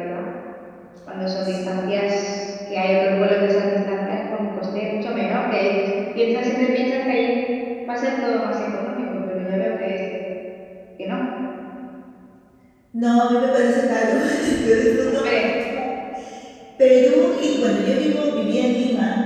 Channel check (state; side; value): identical; both; correlation 1.00